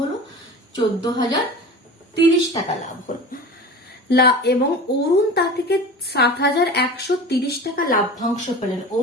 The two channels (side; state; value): both; normal; correlation 0.35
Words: হলো? 14,030 টাকা লাভ হলো। এবং অরুণ তা থেকে 7,130 টাকা লাভ্যাংশ পেলেন।